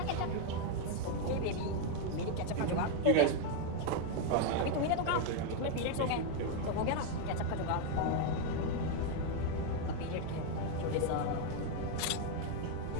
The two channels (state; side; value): different; both; correlation 0.01